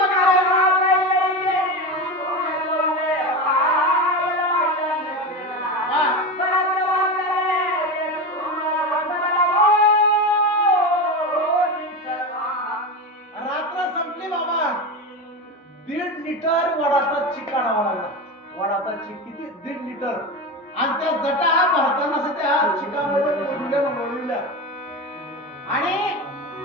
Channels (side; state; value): both; normal; correlation 0.21